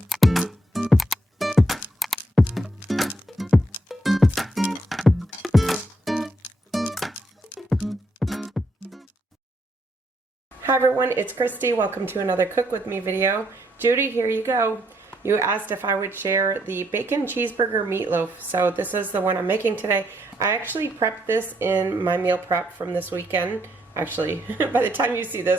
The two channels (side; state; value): both; normal; correlation 0.74